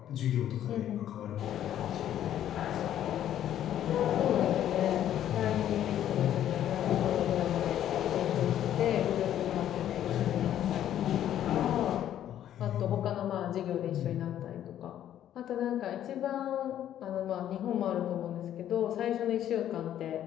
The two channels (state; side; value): quieter; right; 11.2 dB